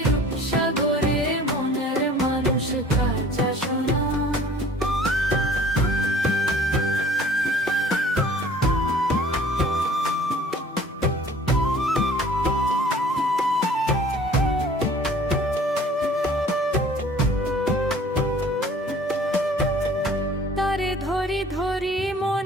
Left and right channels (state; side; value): normal; both; correlation 0.50